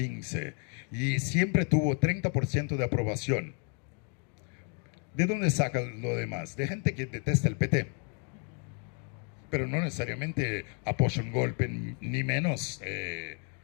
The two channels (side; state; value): right; quieter; 40.0 dB